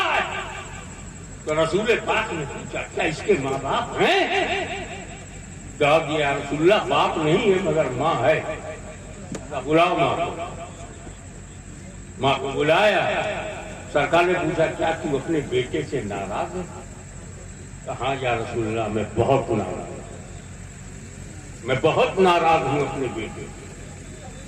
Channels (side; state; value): both; identical; correlation 1.00